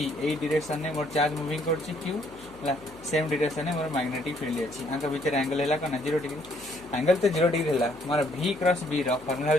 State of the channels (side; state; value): left; noise; hum, 23 dB below the sound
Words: A direction ने मोर charge moving करछि Q ला same direction ने मोर मैग्नेटिक फील्ड अछि आंका भीतर एंगल हैला कना 0 डिग्री एंगल तो 0 डिग्री हैला मोर V क्रॉस B रो फार्मूला